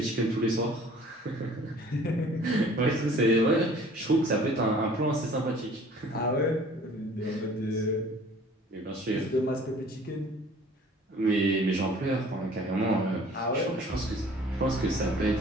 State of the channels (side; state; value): both; normal; correlation 0.50